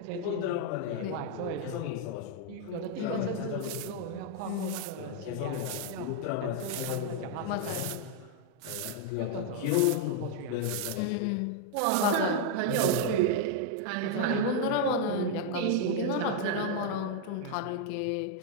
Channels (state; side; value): different; both; correlation 0.00